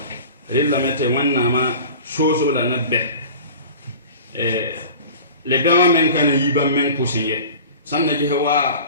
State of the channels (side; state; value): both; inverted; correlation -0.39